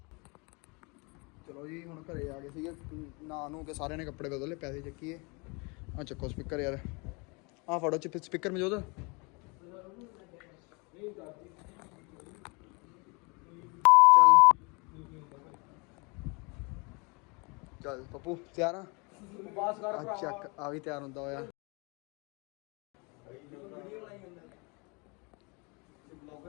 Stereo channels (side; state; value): right; quieter; 30.0 dB